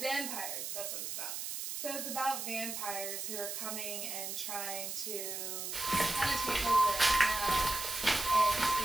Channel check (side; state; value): right; noise; hiss, 5 dB below the sound